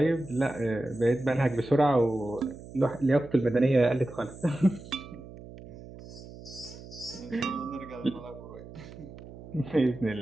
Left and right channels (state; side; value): noise; right; hum, 16 dB below the sound